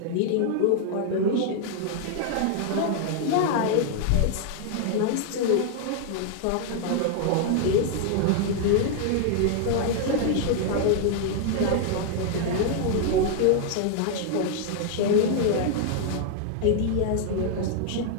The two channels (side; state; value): both; different; correlation 0.00